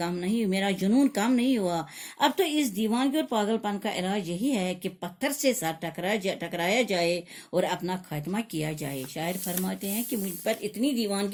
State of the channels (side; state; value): both; identical; correlation 1.00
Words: نہیں ہوئی، میرا جنون کام نہیں ہوا۔ اب تو اس دیوانگی اور پاگل پن کا علاج یہی ہے کہ پتھر سے سر ٹکرایا جائے اور اپنا خاتمہ کیا جائے۔ شاعر فرماتے ہیں کہ مجھ پر اتنی